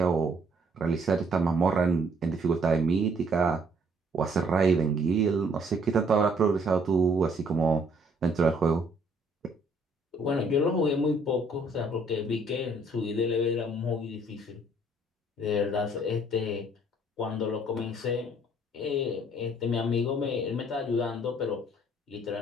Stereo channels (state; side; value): normal; both; correlation 0.63